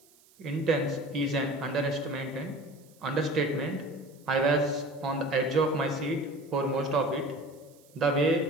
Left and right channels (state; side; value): noise; right; hiss, 29 dB below the sound